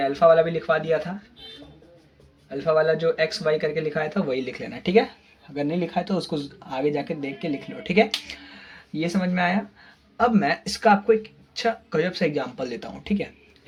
अल्फा वाला भी लिखवा दिया था, अल्फा वाला जो XY करके लिखाया था वही लिख लेना, ठीक है। अगर नहीं लिखा है तो उसको आगे जाके देख के लिख लो, ठीक है। ये समझ में आया। अब मैं इसका आपको एक अच्छा गजब सा एग्जाम्पल देता हूँ, ठीक है,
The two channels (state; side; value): identical; both; correlation 1.00